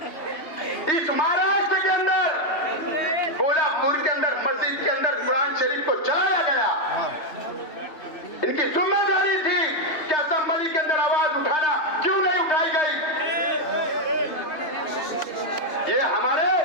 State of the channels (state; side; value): late; right; 3.2 ms